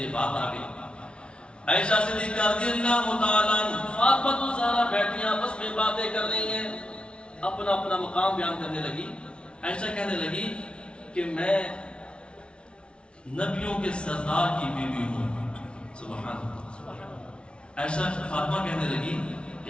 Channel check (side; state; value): right; late; 0.058 ms